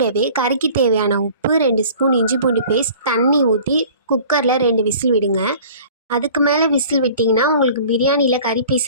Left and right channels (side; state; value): both; inverted; correlation -0.46